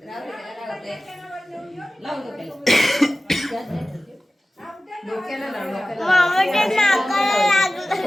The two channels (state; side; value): normal; both; correlation 0.96